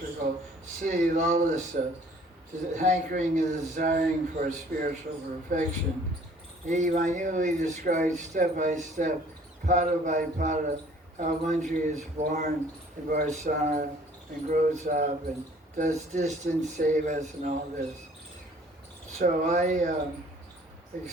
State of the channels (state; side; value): normal; both; correlation 0.55